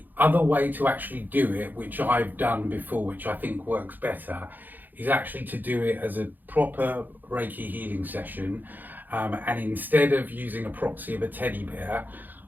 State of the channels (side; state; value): left; late; 0.087 ms